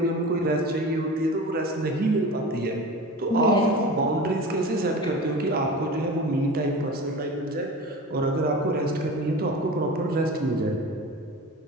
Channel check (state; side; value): normal; both; correlation 0.33